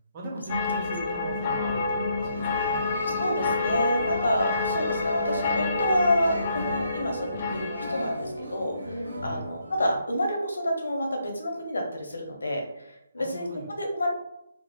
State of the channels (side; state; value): both; inverted; correlation -0.74